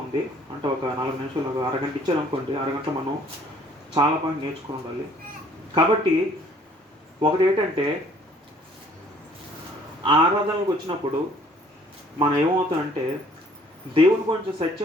ఉంది. అంటే ఒక 4 నిమిషాలు, ఒక అరగంట ఇచ్చారనుకోండి, అరగంట మనం చాలా పాయింట్ నేర్చుకుని ఉండాలి. కాబట్టి ఒకటి ఏంటంటే, ఆరాధనలకు వచ్చినప్పుడు మనం ఏమవుతామంటే దేవుని గురించి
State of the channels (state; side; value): normal; both; correlation 0.58